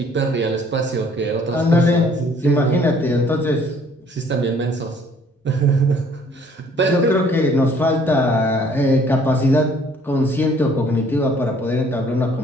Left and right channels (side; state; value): both; normal; correlation 0.59